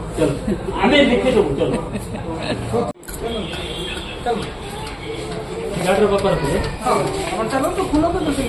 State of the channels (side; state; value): both; identical; correlation 1.00